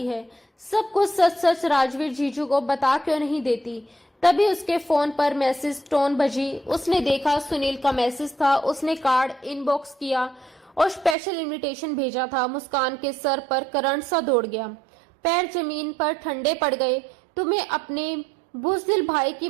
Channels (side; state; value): left; drops out; at 11.2 s